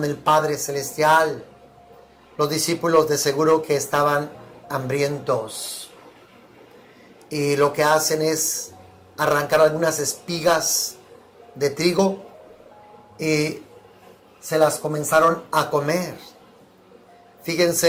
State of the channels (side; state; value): both; identical; correlation 1.00